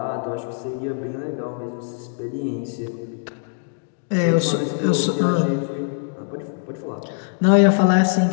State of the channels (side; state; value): right; silent; 64 dB below the other